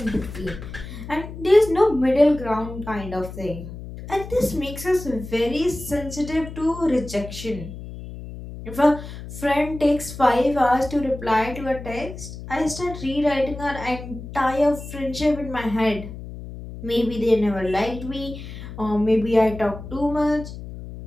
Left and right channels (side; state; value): left; noise; hum, 11 dB below the sound